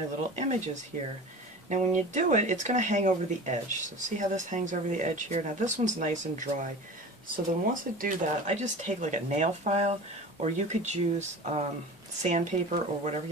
little images here. Now when you do it, it's going to hang over the edge. So see how this hangs over the edge here? Now this one's nice and dry. So then once I do that, I just take like a nail file, or you could use sandpaper or whatever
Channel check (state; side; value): normal; both; correlation 0.36